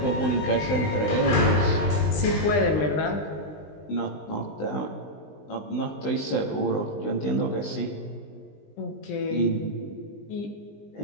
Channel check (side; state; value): right; late; 20 ms